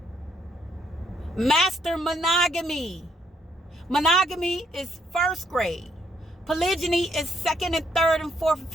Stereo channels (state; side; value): normal; both; correlation 0.71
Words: Master monogamy. Monogamy is first grade. Polygyny is second and third and fourth and